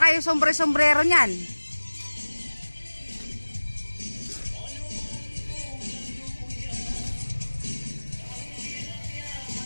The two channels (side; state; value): both; inverted; correlation -1.00